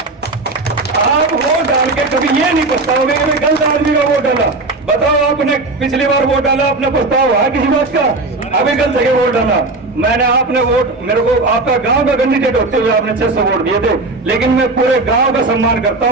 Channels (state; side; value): quieter; left; 3.2 dB